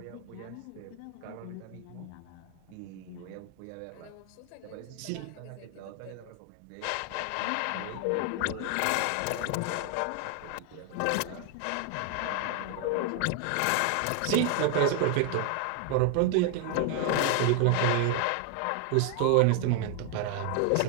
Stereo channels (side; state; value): both; different; correlation 0.00